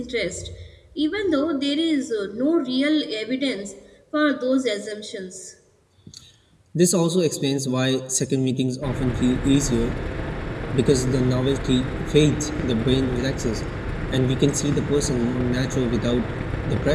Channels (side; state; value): both; identical; correlation 1.00